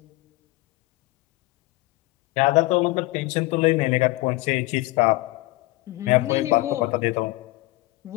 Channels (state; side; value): quieter; right; 20.7 dB